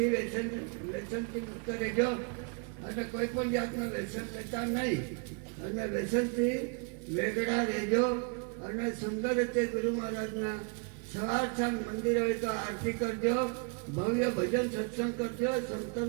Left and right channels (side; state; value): left; quieter; 37.0 dB